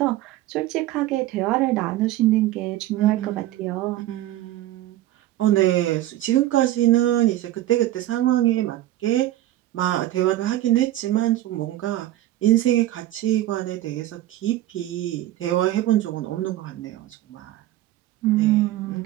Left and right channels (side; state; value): left; quieter; 14.5 dB